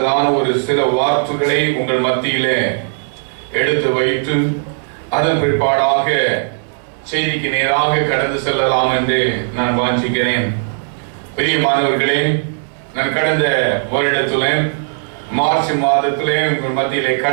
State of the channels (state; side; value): silent; left; digital silence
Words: ஒரு சில வார்த்தைகளை உங்கள் மத்தியிலே எடுத்து வைத்து அதன் பிற்பாடாக செய்திக்கு நேராக கடந்து செல்லலாம் என்று நான் வாஞ்சிக்கிறேன். பிரியமானவர்களே, நான் கடந்த வருடத்துல மார்ச் மாதத்திலே உங்கள் மத்தியிலே